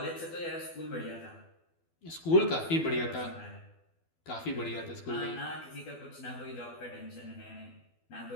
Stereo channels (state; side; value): late; right; 12 ms